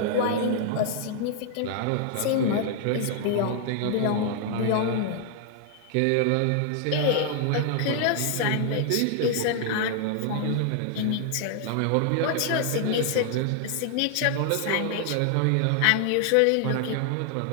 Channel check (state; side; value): different; both; correlation 0.00